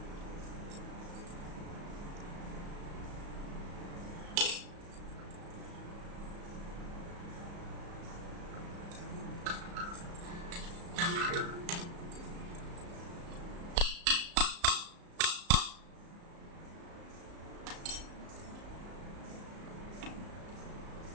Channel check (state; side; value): late; left; 34 ms